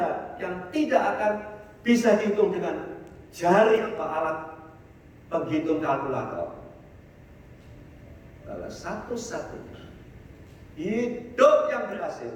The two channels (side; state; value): both; identical; correlation 1.00